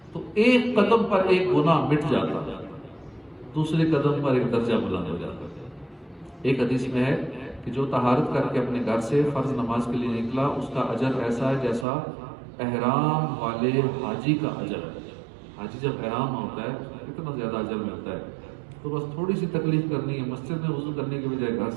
تو ایک قدم پر ایک گناہ مٹ جاتا ہے، دوسرے قدم پر ایک درجہ بلند ہو جاتا ہے. ایک حدیث میں ہے کہ جو طہارت کر کے اپنے گھر سے فرض نماز کے لیے نکلا اس کا اجر ایسا ہے جیسا احرام والے حاجی کا اجر ہے. حاجی جب احرام ہوتا ہے کتنا زیادہ اجر ملتا ہے. تو بس تھوڑی سی تکلیف کرنی ہے، مسجد میں وضو کرنے کے بجائے گھر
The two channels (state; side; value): drops out; left; at 11.9 s